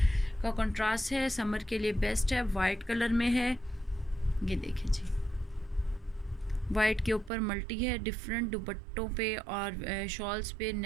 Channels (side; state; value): left; drops out; at 7.3 s